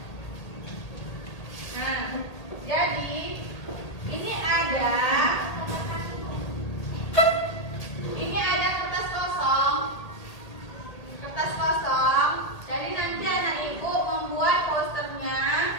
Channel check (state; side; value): late; right; 1.8 ms